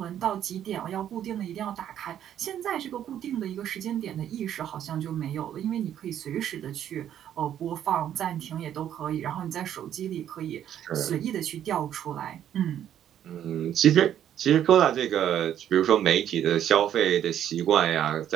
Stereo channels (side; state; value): left; quieter; 10.4 dB